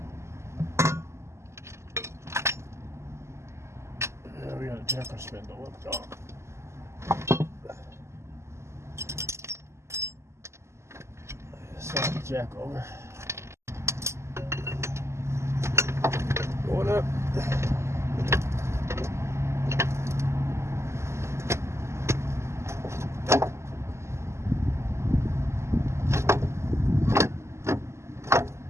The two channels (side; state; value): left; late; 0.13 ms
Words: Yeah, we got a jacker spindle up, y'all. Slide the jack over. Going up.